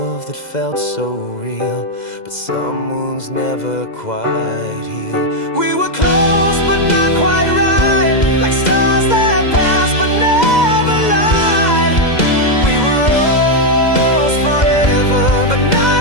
that felt so real, but some wounds never quite heal. We were close but not quite right, like stars that pass but never lied. We were almost forever, but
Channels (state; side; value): late; right; 2.0 ms